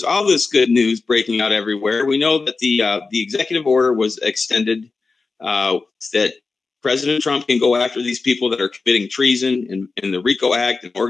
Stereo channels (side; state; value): right; quieter; 4.1 dB